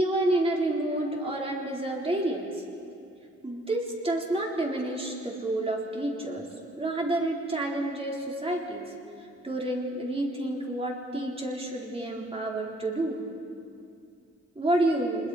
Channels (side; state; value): both; normal; correlation 0.61